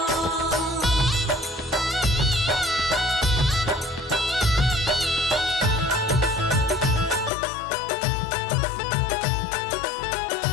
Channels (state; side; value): drops out; right; at 7.3 s